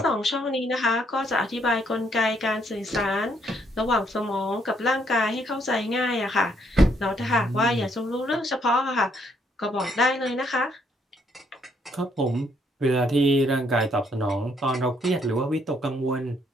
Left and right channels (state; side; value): normal; both; correlation 0.70